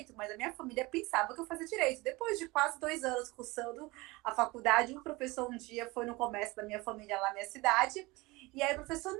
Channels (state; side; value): quieter; left; 22.6 dB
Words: mas a minha família pensava que eu fazia direito. Depois de quase 2 anos cursando a faculdade, um professor um dia foi no comércio da minha família lá na minha cidade, e aí o professor,